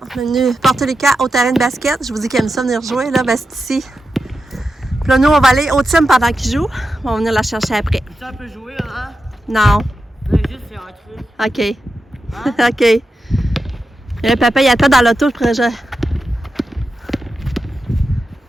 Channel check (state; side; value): normal; both; correlation 0.90